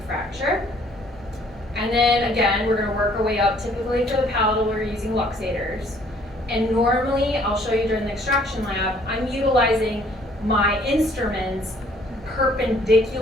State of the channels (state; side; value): normal; both; correlation 0.60